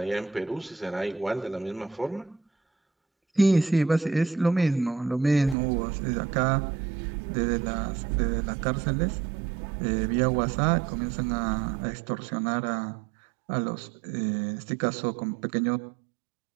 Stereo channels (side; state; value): left; drops out; at 5.6 s